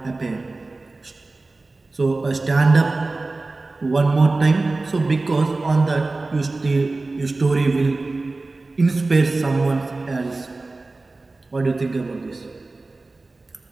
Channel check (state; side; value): quieter; left; 3.3 dB